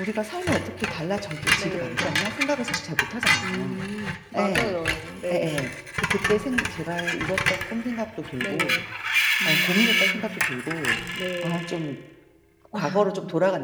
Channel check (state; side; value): identical; both; correlation 1.00